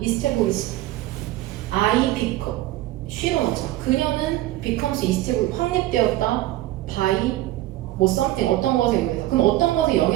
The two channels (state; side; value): quieter; left; 15.9 dB